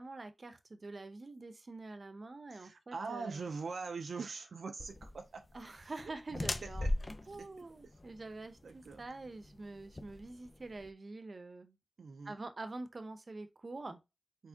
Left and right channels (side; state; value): both; normal; correlation 0.94